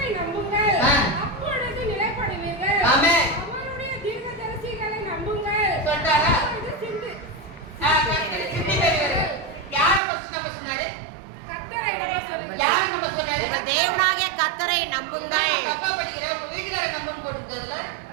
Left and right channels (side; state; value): left; drops out; at 10.0 s